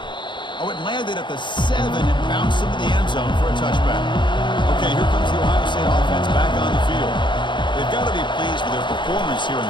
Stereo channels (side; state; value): right; late; 0.23 ms